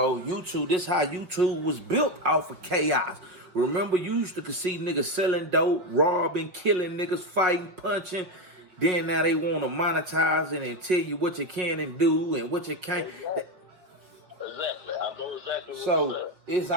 YouTube. This how YouTube was built off of chaos. Remember, you used to see niggas selling dope, robbing, killing niggas, fighting, punching. Then now they want to monetize it and tell you what you can and do and what you can't. Exactly. I know exactly what you're So saying. it's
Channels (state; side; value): late; left; 5.7 ms